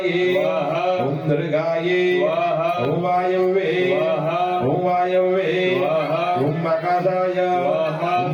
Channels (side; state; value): both; identical; correlation 1.00